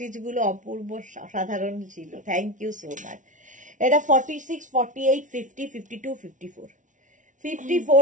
গুলো অপূর্ব সাধারণ ছিল, থ্যাংক ইউ সো মাচ। এটা 46, 48, 50, 52, 54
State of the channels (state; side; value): late; left; 0.37 ms